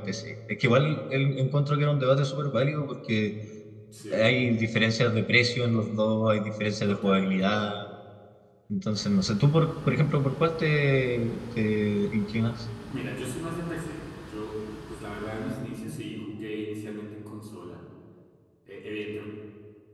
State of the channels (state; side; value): identical; both; correlation 1.00